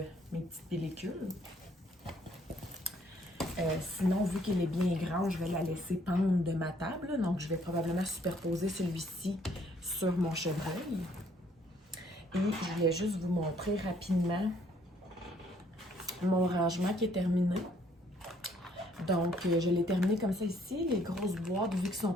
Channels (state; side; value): normal; both; correlation 0.64